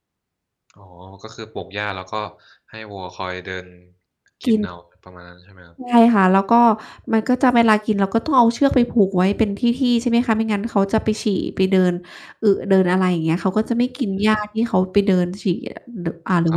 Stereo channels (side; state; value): both; identical; correlation 1.00